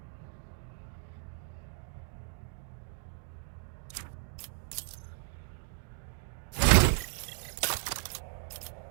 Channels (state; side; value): silent; left; digital silence